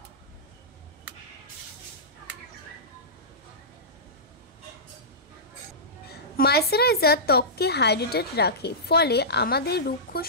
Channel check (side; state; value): both; normal; correlation -0.17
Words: ময়শ্চারাইজার ত্বককে হাইড্রেটেড রাখে, ফলে আমাদের রুক্ষ